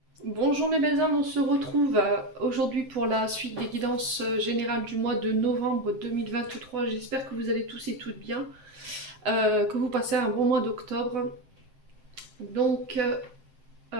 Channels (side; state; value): left; late; 7.6 ms